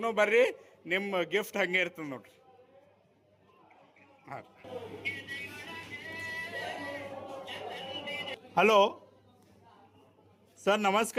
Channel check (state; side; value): identical; both; correlation 1.00